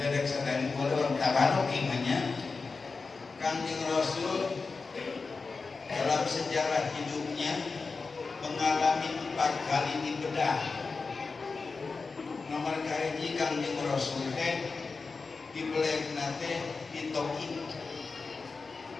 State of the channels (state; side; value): quieter; right; 4.3 dB